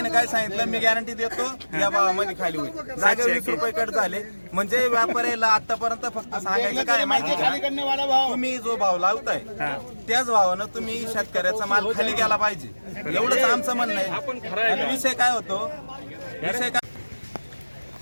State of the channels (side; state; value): both; inverted; correlation -1.00